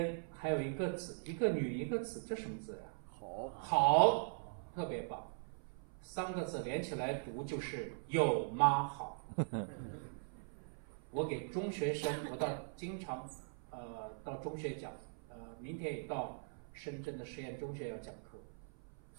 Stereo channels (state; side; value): silent; left; 51 dB below the other